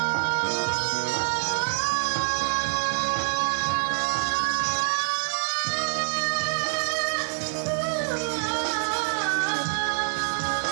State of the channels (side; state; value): left; silent; digital silence